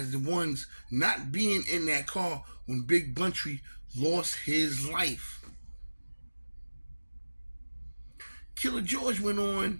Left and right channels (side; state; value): both; inverted; correlation -1.00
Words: the ones not being in that car when Big Bountry lost his life. Killer George went